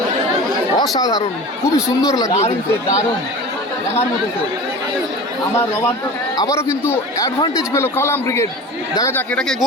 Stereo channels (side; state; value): both; normal; correlation 0.35